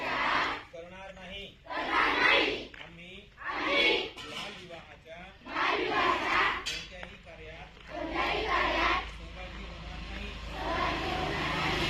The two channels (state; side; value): identical; both; correlation 1.00